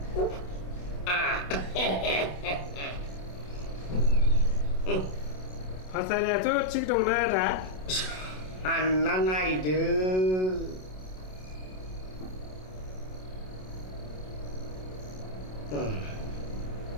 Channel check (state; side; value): late; right; 27 ms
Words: फाथारियाथ' थिग दंना आदा सानना नायदो